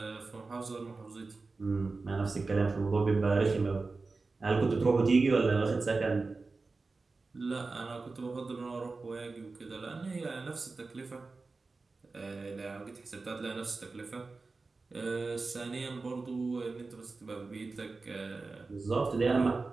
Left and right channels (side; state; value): left; quieter; 3.9 dB